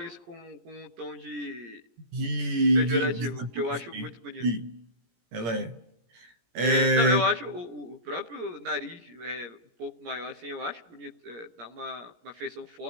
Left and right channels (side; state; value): left; late; 17 ms